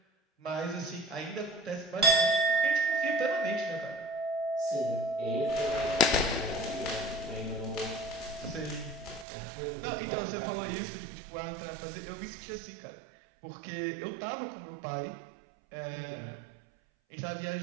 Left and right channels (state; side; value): drops out; left; at 9.2 s